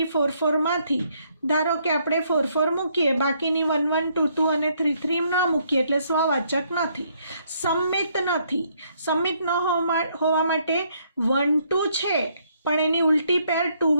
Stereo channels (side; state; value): both; inverted; correlation -0.70